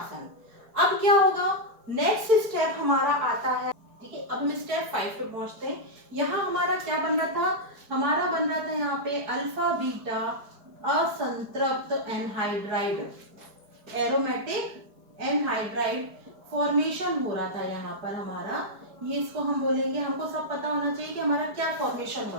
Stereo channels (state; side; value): late; left; 4.7 ms